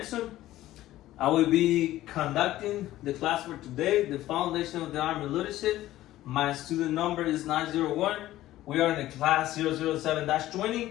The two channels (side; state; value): right; quieter; 14.9 dB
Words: I will be conducting the class for today, the Foundation of the Army Leadership. My student number is 901. We are in the class 007-20